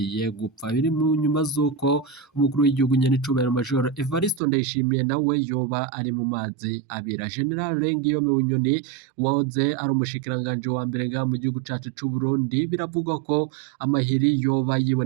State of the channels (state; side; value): drops out; left; at 4.4 s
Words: gupfa. Biri mu nyuma z'uko umukuru w'igihugu nyenicubahiro Major Evariste Ndayishimiye nawe yoba ari mu mazi abira. General Alain Guillaume Bunyoni wahoze ari umushikiranganje wa mbere nga mu gihugu cacu c'u Burundi biravugwa ko amahiri yoba